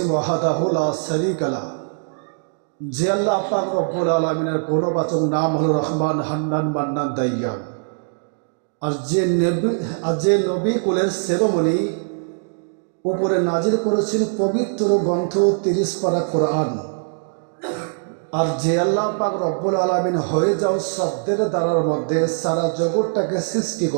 ওয়াহদাহু লা শারীকা লা। যে আল্লাহ পাক রব্বুল আলামিনের গুণবাচক নাম হলো রহমান হান্নান মান্নান দাইয়ান। আর যে নবী কুলের সেরোমনি উপরে নাজিল করেছেন পবিত্র গ্রন্থ 30 পারা কোরআন। আর যে আল্লাহ পাক রব্বুল আলামিন হয়ে যাও শব্দের দ্বারার মধ্যে সারা জগৎটাকে সৃষ্টি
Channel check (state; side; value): silent; left; digital silence